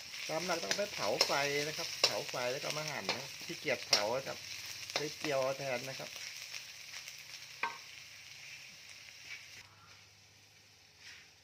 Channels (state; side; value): identical; both; correlation 1.00